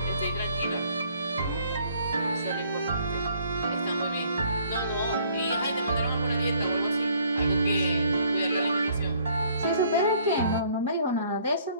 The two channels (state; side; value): inverted; both; correlation -0.61